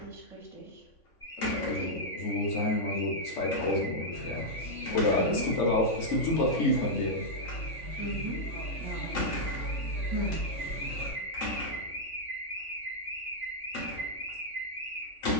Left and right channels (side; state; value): right; late; 3.5 ms